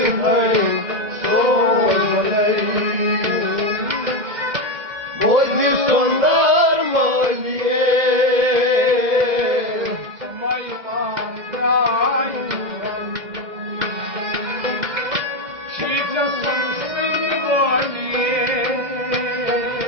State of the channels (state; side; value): late; left; 2.0 ms